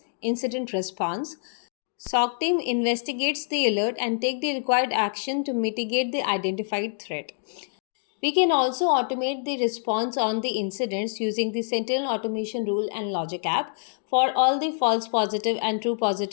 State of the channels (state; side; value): silent; right; digital silence